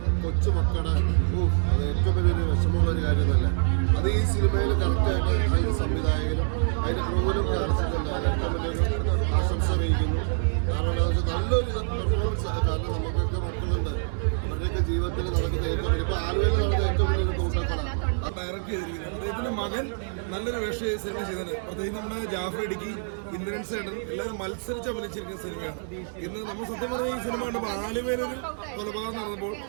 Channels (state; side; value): silent; left; digital silence